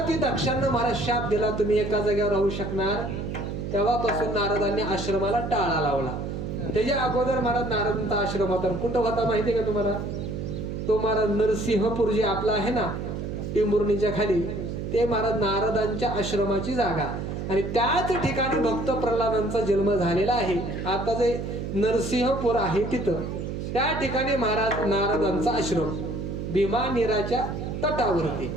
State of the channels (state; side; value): noise; right; hum, 5 dB below the sound